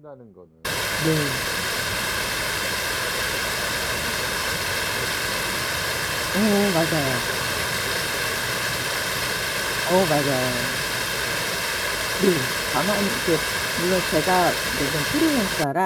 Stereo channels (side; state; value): both; identical; correlation 1.00